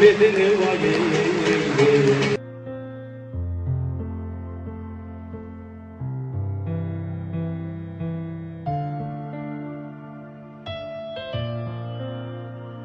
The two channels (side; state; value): both; identical; correlation 1.00